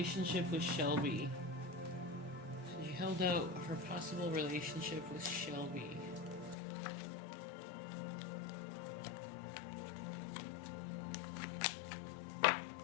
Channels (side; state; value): right; drops out; at 6.6 s